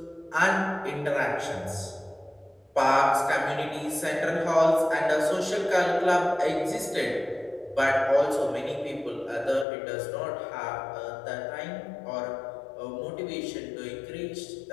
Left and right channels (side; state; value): right; drops out; at 9.7 s